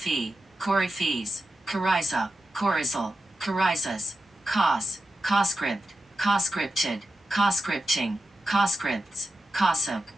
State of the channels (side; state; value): both; normal; correlation 0.90